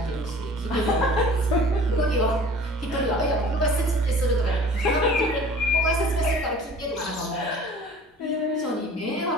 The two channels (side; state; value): both; normal; correlation 0.46